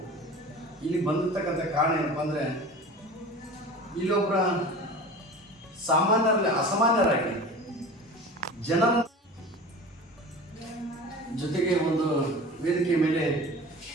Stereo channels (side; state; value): both; normal; correlation 0.37